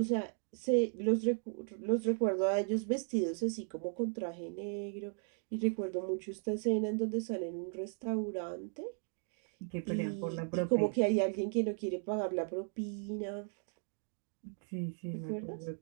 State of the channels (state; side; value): silent; left; 54 dB below the other